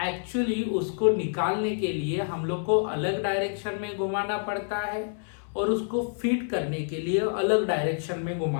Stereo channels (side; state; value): right; silent; 60 dB below the other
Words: एक्चुअली उसको निकालने के लिए हम लोग को अलग डायरेक्शन में घुमाना पड़ता है और उसको फीड करने के लिए अलग डायरेक्शन में